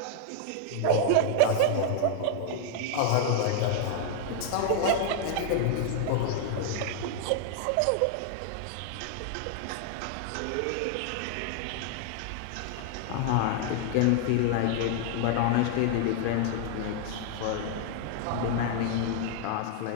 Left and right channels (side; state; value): both; different; correlation -0.01